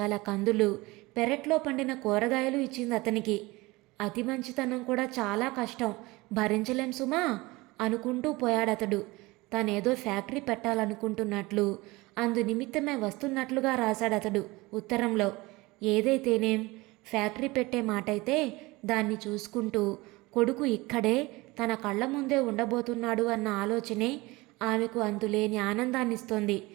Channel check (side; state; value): left; quieter; 22.1 dB